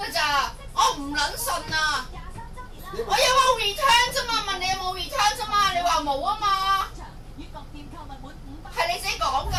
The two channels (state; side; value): identical; both; correlation 1.00